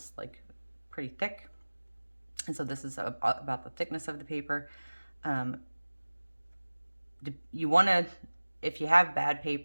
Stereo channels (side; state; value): both; inverted; correlation -1.00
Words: like pretty thick. And so this is about the thickness of the paper. You want to, if you have bad